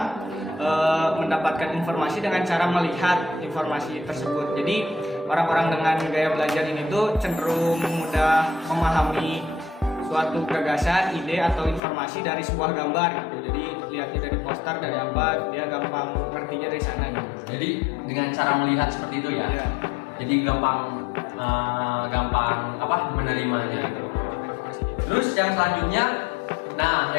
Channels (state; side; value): drops out; right; at 11.8 s